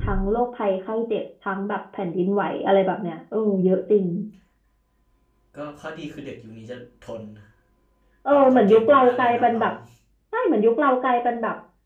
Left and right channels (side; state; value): both; identical; correlation 1.00